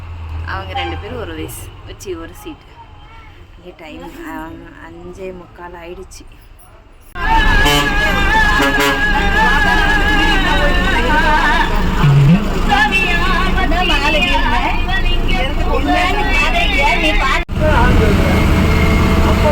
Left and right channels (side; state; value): both; identical; correlation 1.00